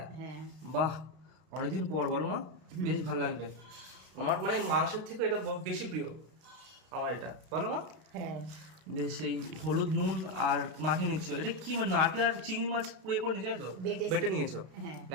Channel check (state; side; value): late; left; 32 ms